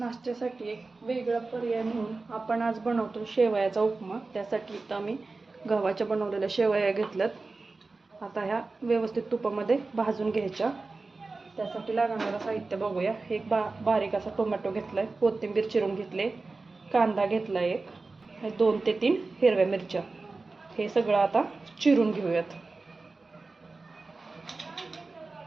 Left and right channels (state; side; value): quieter; left; 3.7 dB